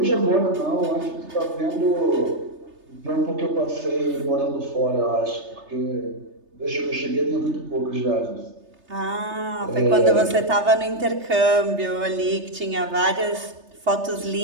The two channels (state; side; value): late; left; 3.3 ms